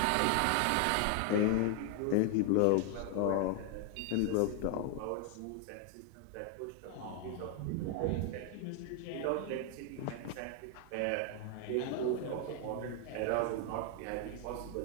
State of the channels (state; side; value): different; both; correlation 0.00